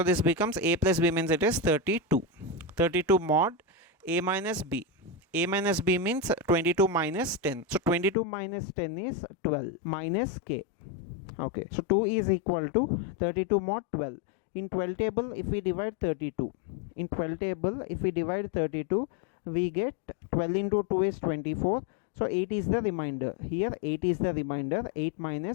this becomes A plus B means it is 32. 32 mod A minus B. A minus B means 22 minus 10. So 22 minus 10 is 12 minus K. Okay, so 2 is equal to 32 mod 12. In 12 table if we divide 32. In 12 table if we divide 32, we get 12 into 2 is 24. So 8 is the remainder. Here 8 is the remainder. 8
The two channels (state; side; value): drops out; right; at 8.2 s